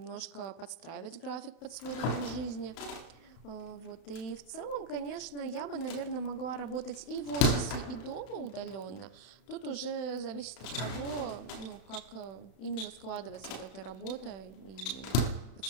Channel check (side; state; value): right; late; 32 ms